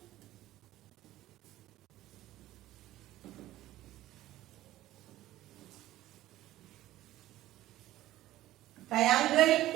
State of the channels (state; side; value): quieter; left; 15.1 dB